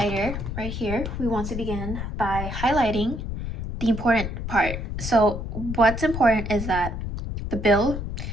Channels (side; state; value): left; noise; rumble, 5 dB below the sound